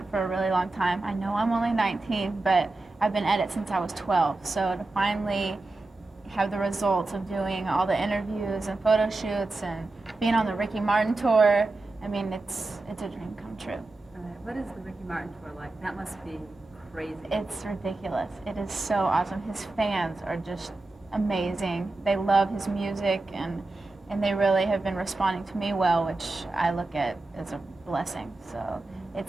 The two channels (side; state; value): left; quieter; 3.1 dB